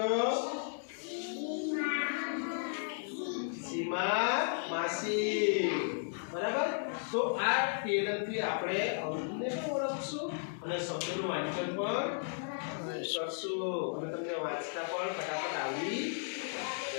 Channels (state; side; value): silent; right; digital silence